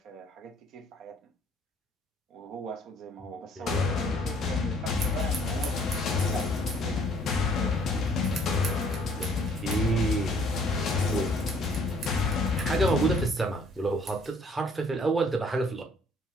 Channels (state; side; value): normal; both; correlation 0.60